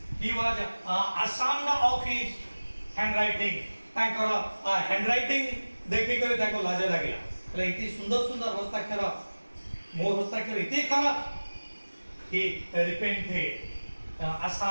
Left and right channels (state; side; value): inverted; both; correlation -1.00